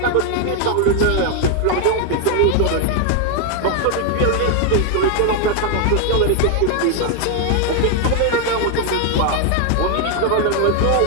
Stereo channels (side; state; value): both; different; correlation 0.01